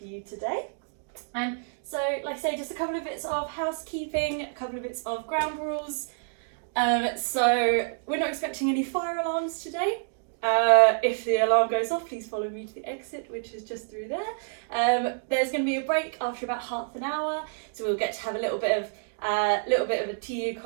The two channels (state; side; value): silent; left; digital silence